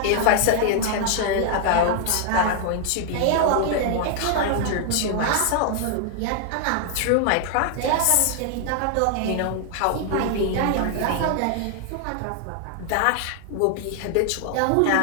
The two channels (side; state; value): both; different; correlation 0.00